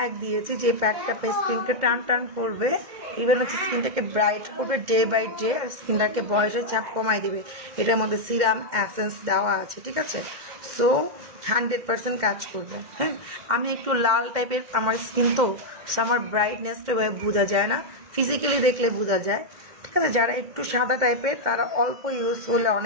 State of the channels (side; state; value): left; late; 2.1 ms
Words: দিয়েছি, যে প্যাকটা স্কিনকে টান করবে, ইভেন হচ্ছে স্কিনটাকে ব্রাইট করবে ডে বাই ডে, আর স্কিনটাকে বয়সের ছাপ কমাই দিবে। এটার মধ্যে সিরাম অ্যাসেন্স দেওয়া আছে, ঠিক আছে? সো 100% কাজ করবে। হ্যাঁ, আমি একটু লাল টাইপের আমার স্কিন, তো আমার ব্রাইটনেসটা বোঝা যায় না, ফিজিক্যালি দেখলে বোঝা যায়, ঠিক আছে? যারা একটু সাদা টাইপের তারা অল্প ইউজ করলে